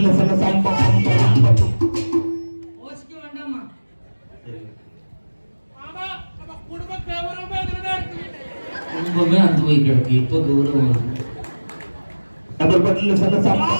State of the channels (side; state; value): both; inverted; correlation -1.00